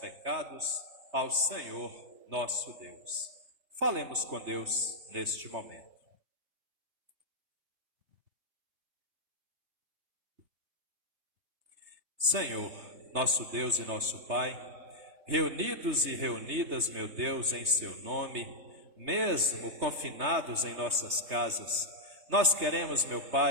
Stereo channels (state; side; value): late; left; 3.2 ms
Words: ao Senhor nosso Deus. Falemos com Deus neste momento. Senhor, nosso Deus e nosso Pai, reunidos e reunidas, meu Deus, em seu nome, mesmo confinados em nossas casas, nós queremos, meu